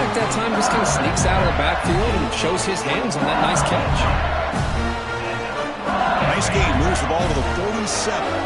that time just kind of sneaks out of the backfield and shows his hands on that nice catch. Nice game. Moves the ball to the 47.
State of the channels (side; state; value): both; identical; correlation 1.00